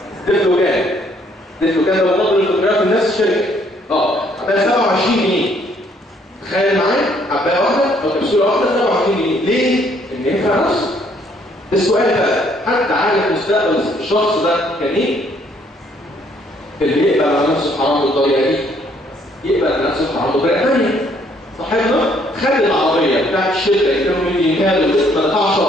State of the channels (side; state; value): both; normal; correlation 0.66